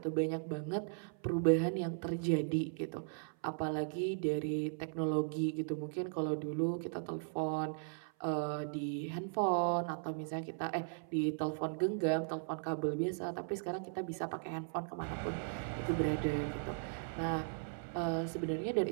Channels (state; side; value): silent; left; 53 dB below the other